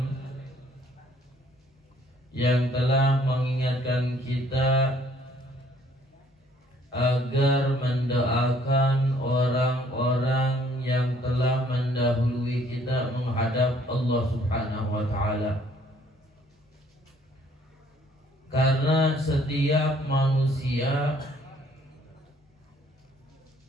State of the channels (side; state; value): both; normal; correlation 0.61